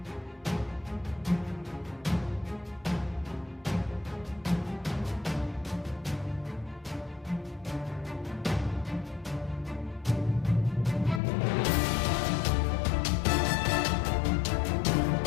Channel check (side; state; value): right; drops out; at 11.2 s